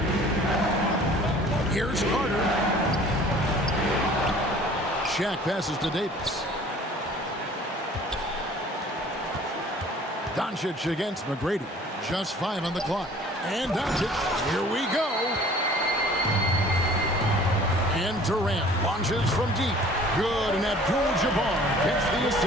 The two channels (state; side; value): normal; both; correlation 0.50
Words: Here's Carter. Shaq passes to Davis. Doncic against McGrady. Just 5 on the clock. And Doncic. Here we go. And Durant launches from deep. Good. And Abdul-Jabbar gets the